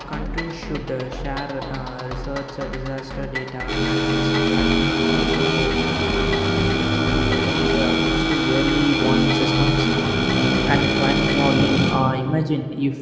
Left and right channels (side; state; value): both; identical; correlation 1.00